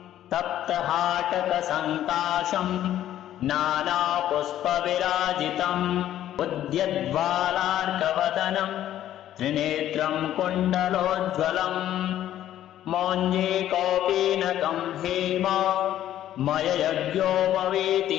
तप्तहाटकसङ्काशम् नानापुष्पविराजितम् उद्यद्वालार्कवदनम् त्रिनेत्रं कुण्डलोज्ज्वलम् मौञ्जे कौपीनकं हेम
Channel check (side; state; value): right; quieter; 12.1 dB